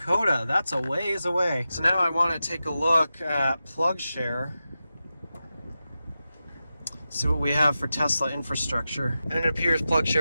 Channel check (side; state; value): both; inverted; correlation -0.92